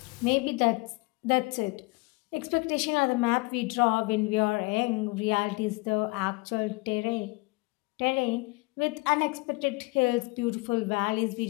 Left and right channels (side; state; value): right; quieter; 25.9 dB